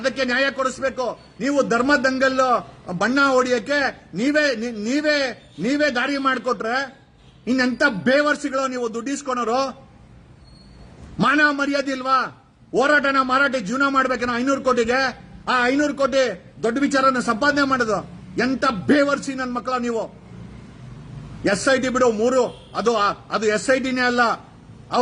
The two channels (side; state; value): both; identical; correlation 1.00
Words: ನ್ಯಾಯ ಕೊಡಿಸಬೇಕು. ನೀವು ಧರ್ಮ ದಂಗಲ್ಲು ಬಣ್ಣ ಹೊಡಿಯಕ್ಕೆ ನೀವೇ ದಾರಿ ಮಾಡಿಕೊಟ್ರೆ ಇನ್ನೆಂತ ಬೇವರ್ಸಿಗಳು ನೀವು ದುಡ್ಡಿಸ್ಕೊಳೋರು. ಮಾನ ಮರ್ಯಾದೆ ಇಲ್ವಾ? ಹೋರಾಟನ ಮಾರಾಟ ಜೀವನ ಮಾಡ್ಬೇಕೇನೋ 500 ಕೋಟಿಗೆ. ಆ 500 ಕೋಟಿ ದೊಡ್ಡ ವಿಚಾರನ ಸಂಪಾದನೆ ಮಾಡೋದು ಎಂತ ಬೇವರ್ಸಿ ನನ್ನ ಮಕ್ಕಳ ನೀವು. SIT ಬಿಡು, 3 ಅದು SITನೇ ಅಲ್ಲ.